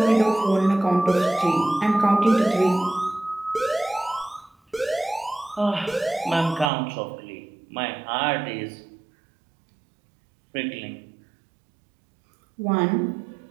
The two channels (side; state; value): left; drops out; at 6.7 s